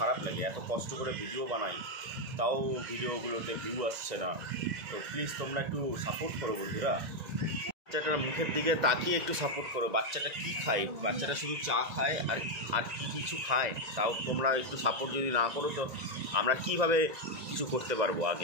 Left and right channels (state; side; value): late; left; 1.9 ms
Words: লাগে, এত কষ্ট করে ভিডিও বানাই তাও ভিডিওগুলোতে ভিউ আসছে না। তো প্লিজ তোমরা একটু সাপোর্ট করো বন্ধুরা। বাচ্চাটার মুখের দিকে তাকিয়ে একটু সাপোর্ট করো। বাচ্চাটা কি খায়? বাচ্চাটা শুধু চা খায় আর কি কিছু খায়? তাও তোমরা একটু সাপোর্ট যদি না করো তো আমরা কিভাবে কিছু করতে পারবো?